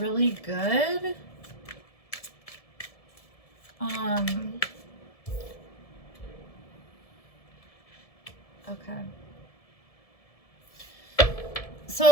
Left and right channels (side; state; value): right; late; 1.7 ms